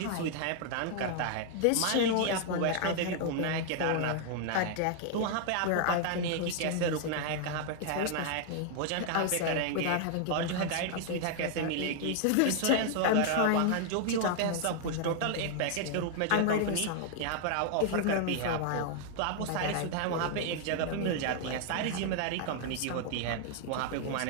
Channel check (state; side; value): different; both; correlation 0.00